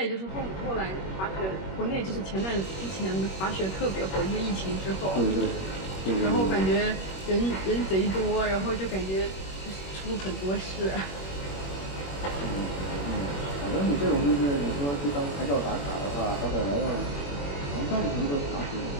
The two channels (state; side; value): late; right; 21 ms